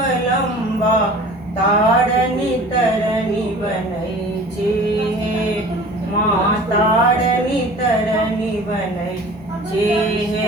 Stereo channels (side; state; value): both; normal; correlation 0.43